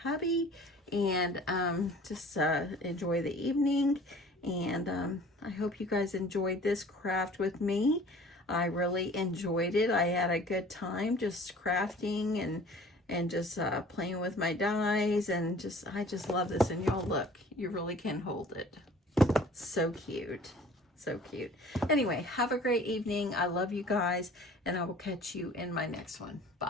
and just enjoy the evening. And I hope you guys enjoyed this craft with me. I really enjoyed it. I had a good time just crafting and just playing with my dies, and I just love this. And y'all look, you really can hold it. So cute. So cute. Anyway, have a great evening. I love you guys, and I will catch you in my next one.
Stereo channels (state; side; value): normal; both; correlation 0.48